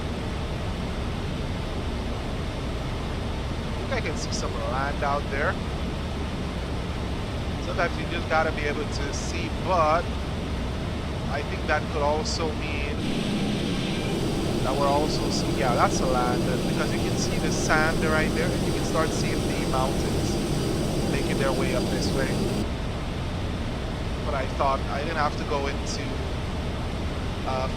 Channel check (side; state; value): both; identical; correlation 1.00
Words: I can see some land out there. Sometimes you just gotta be able to see, but I think that could also mean that we're also seeing, yeah, that's a land, because you can see the sand right there, and you can start seeing the mountains making their way up this way. But I thought I didn't have to go into